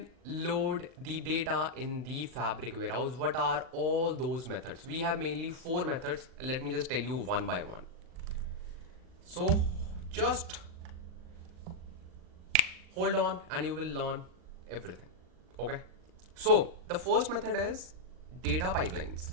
load the data in the Fabric warehouse? What are all those methods? We have mainly 4 methods. Let me just tell you one by one. So just hold on and you will learn everything. Okay, So the first method is data pipelines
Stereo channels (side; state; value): left; late; 39 ms